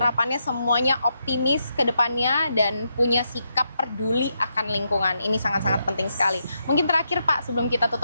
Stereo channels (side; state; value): both; inverted; correlation -0.82